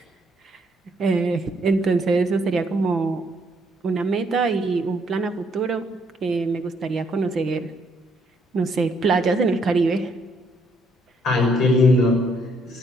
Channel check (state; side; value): normal; both; correlation 0.70